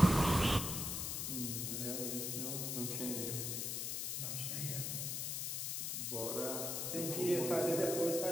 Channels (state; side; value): noise; left; hiss, 2 dB below the sound